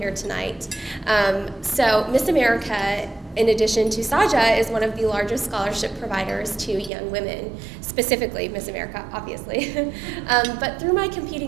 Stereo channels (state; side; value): drops out; left; at 6.9 s